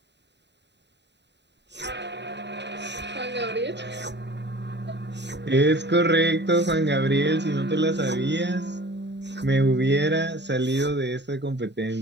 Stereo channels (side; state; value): left; late; 0.51 ms